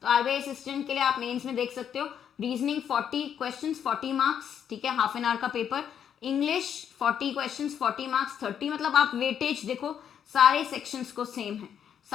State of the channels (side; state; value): right; quieter; 8.7 dB